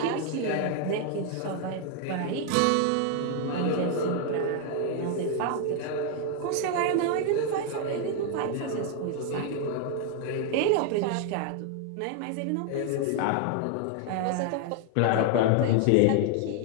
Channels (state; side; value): different; both; correlation 0.00